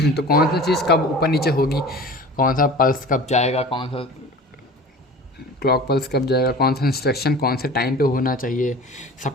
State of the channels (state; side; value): normal; both; correlation 0.39